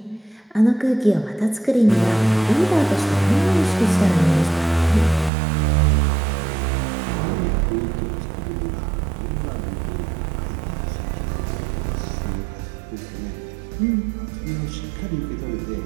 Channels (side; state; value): left; drops out; at 5.3 s